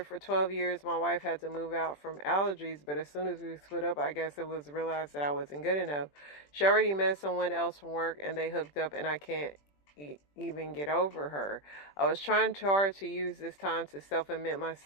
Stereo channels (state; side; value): late; right; 20 ms